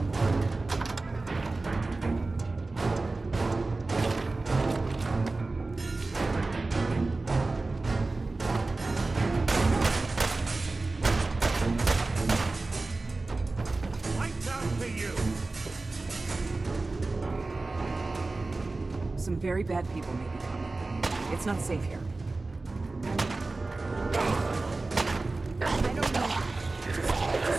Some very bad people may be coming. It's not safe here. I don't know.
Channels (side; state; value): left; quieter; 3.4 dB